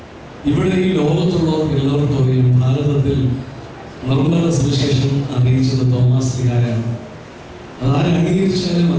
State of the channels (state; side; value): identical; both; correlation 1.00